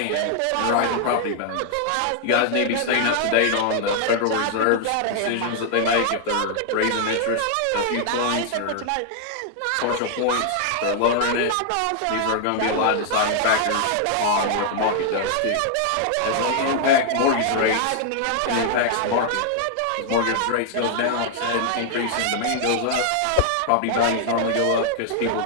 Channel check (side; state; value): both; different; correlation 0.00